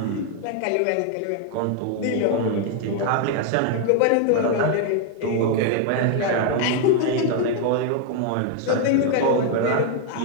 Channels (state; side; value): different; both; correlation 0.00